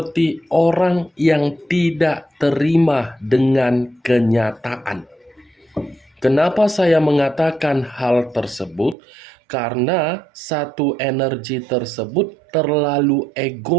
orang yang tidak terima dengan kenyataan. Kenapa saya mengatakan hal tersebut? Karena satu energi tersebut terlalu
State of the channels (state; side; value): drops out; left; at 9.0 s